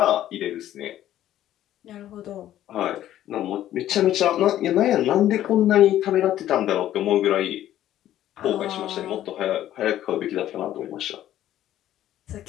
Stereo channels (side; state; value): right; quieter; 12.6 dB